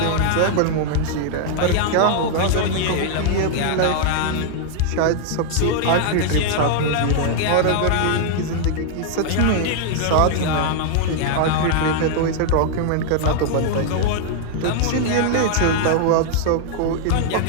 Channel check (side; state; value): both; different; correlation 0.00